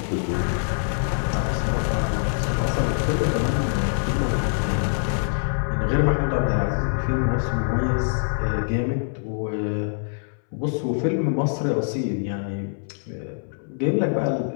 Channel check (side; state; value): right; silent; 62 dB below the other